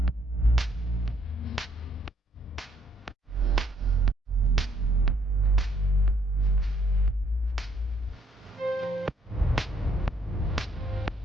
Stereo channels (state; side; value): normal; both; correlation 0.69